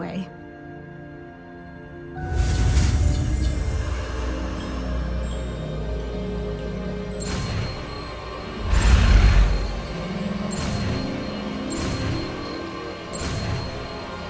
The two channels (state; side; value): identical; both; correlation 1.00